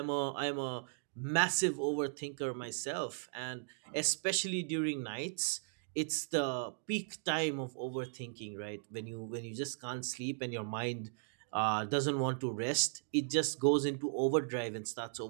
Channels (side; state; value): left; silent; digital silence